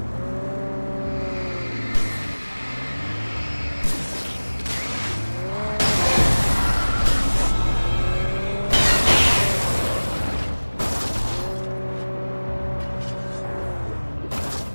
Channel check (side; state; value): both; inverted; correlation -1.00